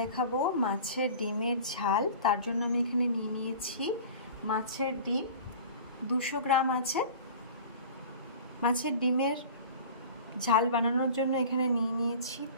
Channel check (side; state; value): both; inverted; correlation -0.40